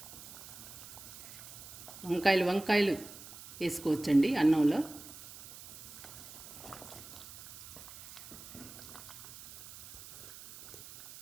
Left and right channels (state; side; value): noise; right; hiss, 15 dB below the sound